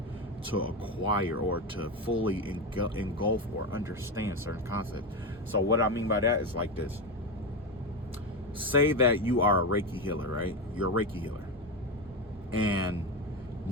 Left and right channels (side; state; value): both; normal; correlation 0.15